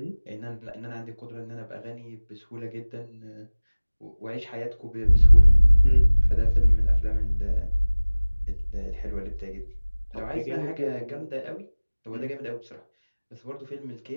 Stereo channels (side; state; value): both; inverted; correlation -1.00